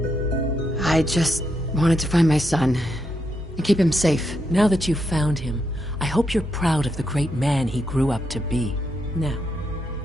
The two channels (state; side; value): normal; both; correlation 0.81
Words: I just wanted to find my son and keep him safe. Now that you've found him, I hope you're proud of the great man he grew up to be. Now,